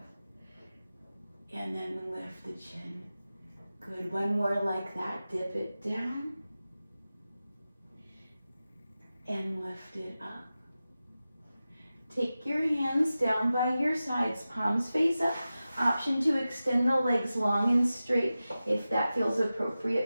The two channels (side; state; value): both; inverted; correlation -0.94